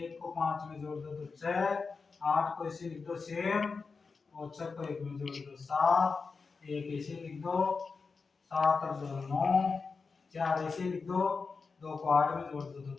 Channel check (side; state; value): right; quieter; 4.7 dB